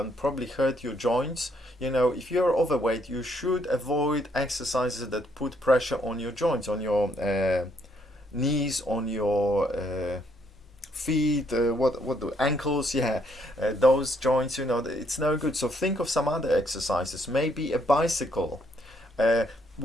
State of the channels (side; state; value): both; normal; correlation 0.71